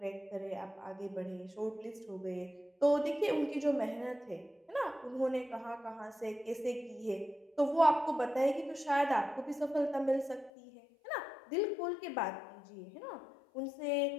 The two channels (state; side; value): drops out; right; at 10.5 s